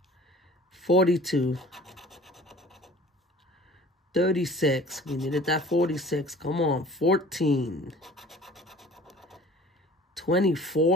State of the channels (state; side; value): normal; both; correlation 0.47